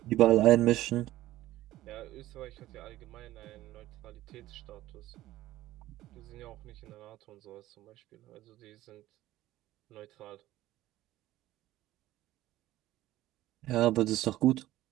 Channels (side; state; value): left; quieter; 15.4 dB